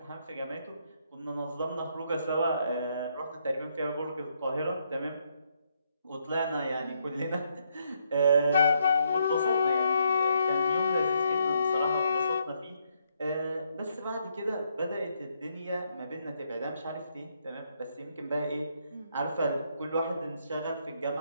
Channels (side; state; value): both; inverted; correlation -0.75